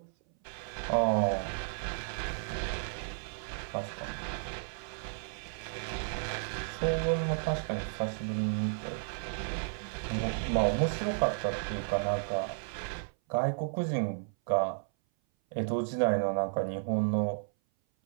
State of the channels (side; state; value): left; silent; 56 dB below the other